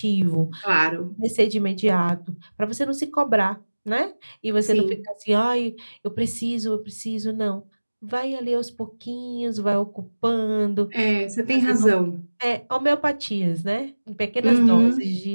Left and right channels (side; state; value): both; inverted; correlation -1.00